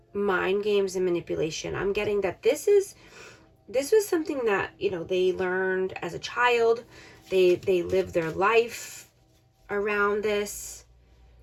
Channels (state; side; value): identical; both; correlation 1.00